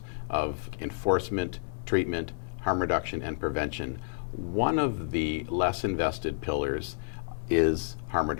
of enforcement, treatment, harm reduction, and prevention, one of the less invested pillars is harm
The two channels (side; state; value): right; silent; digital silence